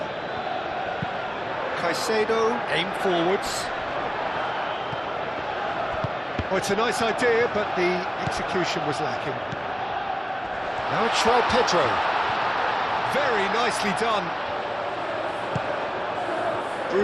Caicedo, aim forwards. Oh, it's a nice idea, but the execution was lacking. Now it's João Pedro. Very nicely done.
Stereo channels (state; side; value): identical; both; correlation 1.00